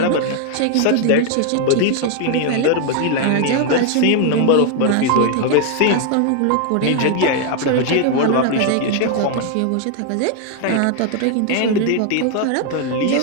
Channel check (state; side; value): different; both; correlation 0.01